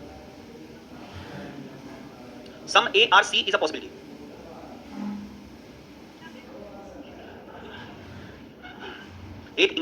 some A are C is a possibility. एक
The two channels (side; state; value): both; identical; correlation 1.00